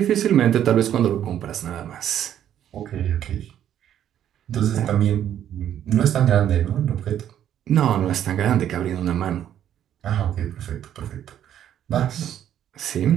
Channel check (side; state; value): left; quieter; 10.5 dB